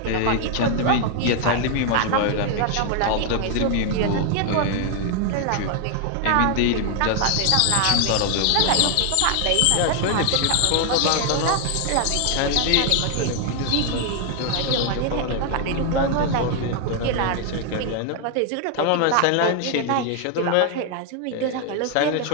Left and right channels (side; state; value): both; different; correlation 0.00